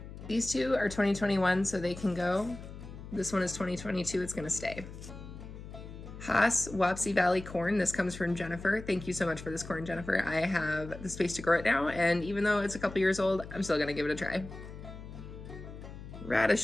These two are 2021, so they can go. This one is 2022, it's gonna stay. Haas Wapsie Valley corn. This comes from Jennifer. Thank you so much for this corn, Jennifer. I have the space to grow it now, and even though it's a couple years old, I'm still gonna give it a try.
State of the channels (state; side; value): noise; left; hum, 13 dB below the sound